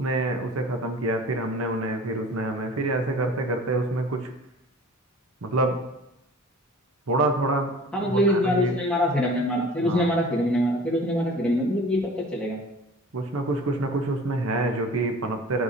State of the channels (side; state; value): both; normal; correlation 0.43